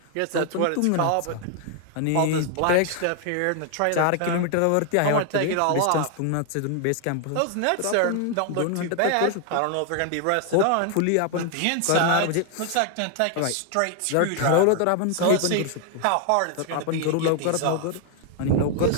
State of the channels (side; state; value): both; different; correlation 0.00